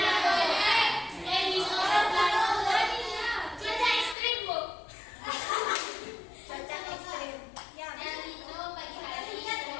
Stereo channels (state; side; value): drops out; right; at 4.2 s